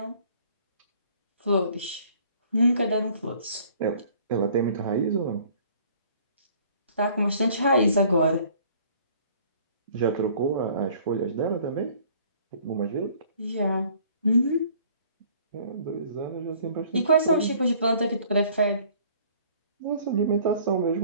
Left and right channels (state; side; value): inverted; both; correlation -0.55